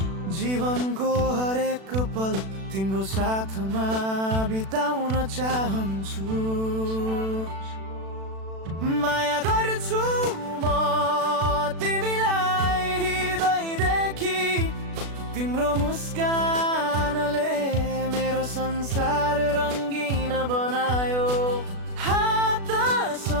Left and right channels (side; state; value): left; late; 36 ms